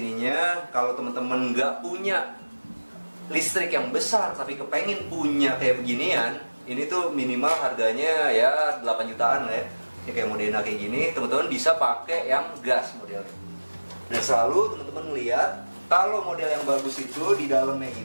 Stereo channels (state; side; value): inverted; both; correlation -1.00